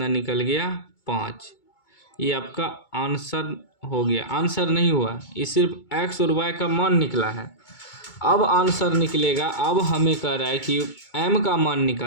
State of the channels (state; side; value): late; right; 2.2 ms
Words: निकल गया 5। ये आपका आंसर हो गया। आंसर नहीं हुआ, ये सिर्फ x और y का मान निकला है। अब आंसर निकलेगा, अब हमें कह रहा है कि m का मान